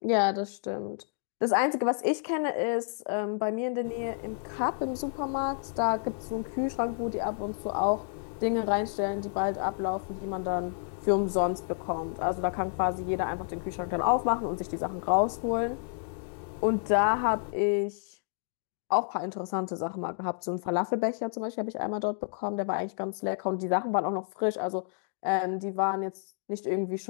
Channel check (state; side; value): silent; right; digital silence